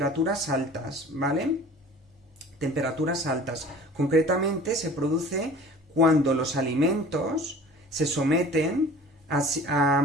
altas, ¿vale? Temperaturas altas. Concretamente se produce cuando los alimentos se someten a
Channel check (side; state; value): both; normal; correlation 0.44